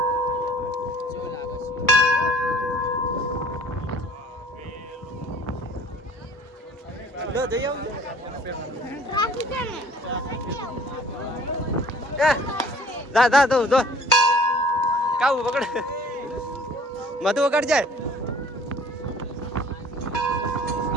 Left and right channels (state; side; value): normal; both; correlation 0.52